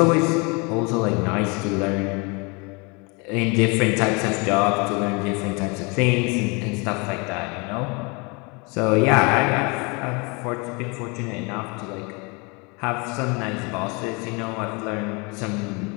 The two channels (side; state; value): right; quieter; 29.7 dB